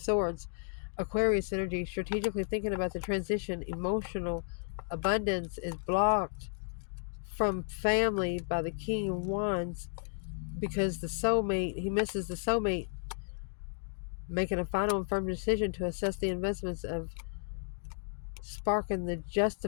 Aquarius energy, strategically thinking about the transition. Emotional abundance is blocked from family by the King of Wands because the soulmate, he misses the soulmate. Making a final and firm decision to assess the investments of sparking the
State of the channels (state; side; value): silent; right; digital silence